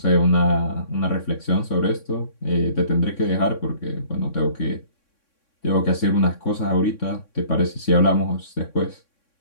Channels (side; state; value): right; late; 3.6 ms